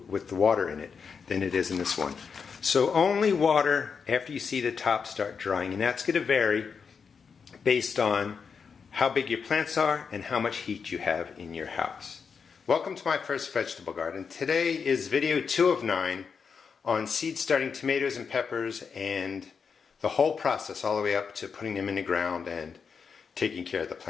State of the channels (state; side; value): quieter; right; 5.9 dB